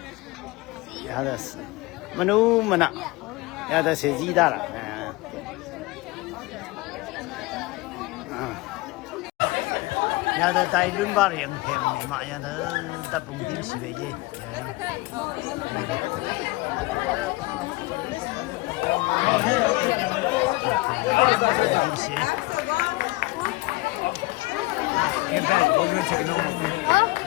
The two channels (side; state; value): right; quieter; 21.8 dB